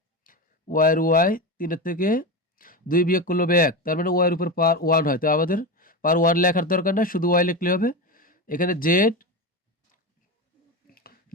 y এর y, 3 এর থেকে 2 বিয়োগ করলে হবে 1, তার মানে y এর উপর পাওয়ার 1 হয়, তো আমাদের পাওয়ার 1 লেখার দরকার না, শুধু y লিখলে হবে। এখানে z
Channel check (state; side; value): normal; both; correlation 0.19